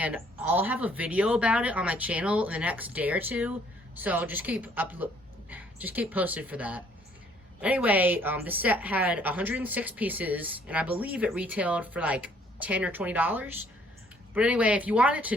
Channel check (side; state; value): both; normal; correlation 0.62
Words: I'll have a video about it on my channel in the next day or two. So just keep posted for that. Anyway, the set had 106 pieces, and I believe it retailed for like $10 or $20. But anyway, if you want it